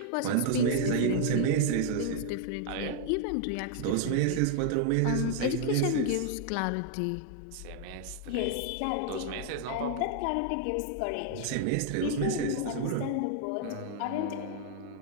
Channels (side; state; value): both; different; correlation 0.00